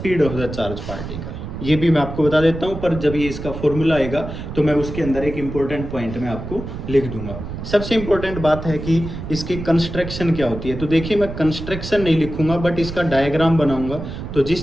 of the charge particle. ये भी मैं आपको बता देता हूँ, पर जब ये इसका फॉर्मूला आएगा तो मैं उसके अंदर एक इम्पोर्टेंट पॉइंट में आपको लिख दूंगा। सबसे इम्पोर्टेंट बात है कि इसकी कंस्ट्रक्शन क्या होती है। तो देखिए, मैं कंस्ट्रक्शन नहीं लिखूंगा, बट इसका डायग्राम बनाऊंगा। तो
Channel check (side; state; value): right; noise; rumble, 8 dB below the sound